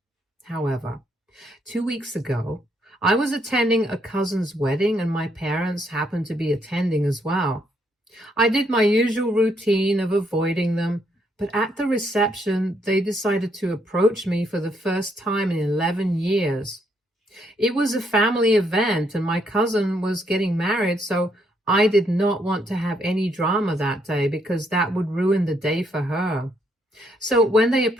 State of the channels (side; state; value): both; normal; correlation 0.73